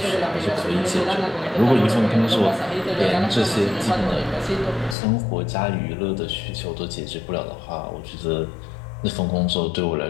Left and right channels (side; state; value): right; drops out; at 5.0 s